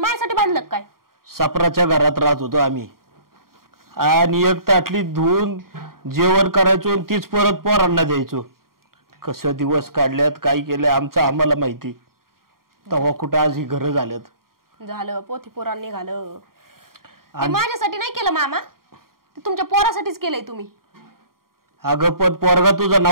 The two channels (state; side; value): late; left; 0.92 ms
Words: बांधलं काय? सापराच्या घरात राहत होतो आम्ही, आणि एक ताटली धुवून जेवण करायचो आणि तीच परत पोरांना द्यायचो. कसं दिवस काढल्यात, काय केलंय आमचं आम्हाला माहिती. तेव्हा कुठं आज ही घरं झाल्यात. झालं पोथी पोरांनी निघालं. माझ्यासाठी नाही केलं मामा, ते तुमच्या पोरासाठीच केलंय तुम्ही. अगं पण पोरगा तुझा